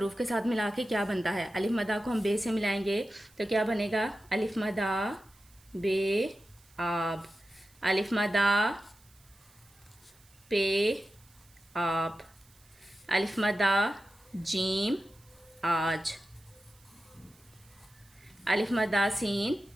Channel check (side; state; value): right; noise; hiss, 29 dB below the sound